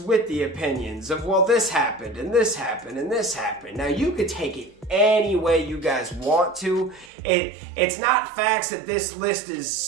the opinions of, well, this happened, and this happened, and this happened. Now, you could take it any way you guys want to. It's not facts that this list is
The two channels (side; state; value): left; drops out; at 7.1 s